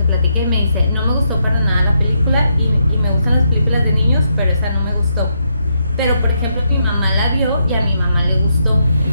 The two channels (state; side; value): inverted; both; correlation -0.79